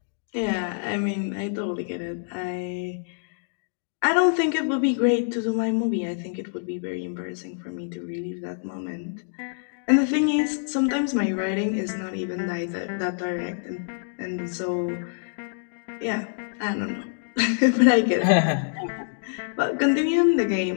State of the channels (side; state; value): right; silent; digital silence